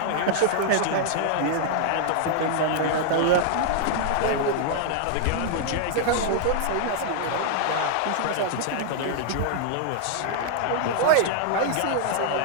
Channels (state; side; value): different; both; correlation -0.01